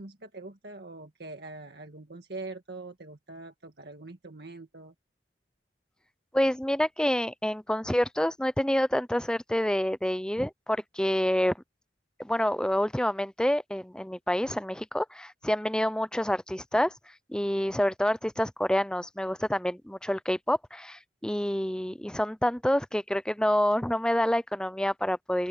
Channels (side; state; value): both; normal; correlation 0.96